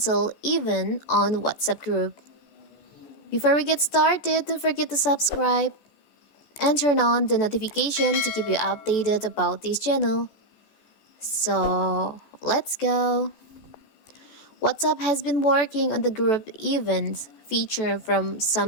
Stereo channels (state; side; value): late; right; 14 ms